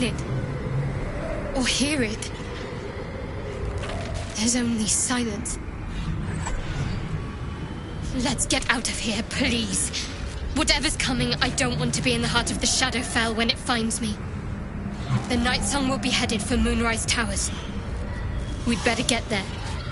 it or hear it. There's only silence. Let's get out of here, please. Whatever's coming, I don't want to be in the heart of the Shadowfell when it finds me. The Night Song will be headed for Moonrise Towers. We'd better get there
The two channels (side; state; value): both; identical; correlation 1.00